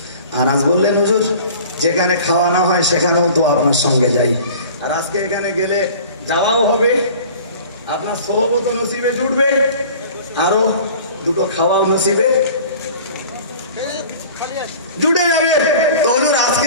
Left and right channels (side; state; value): both; inverted; correlation -0.44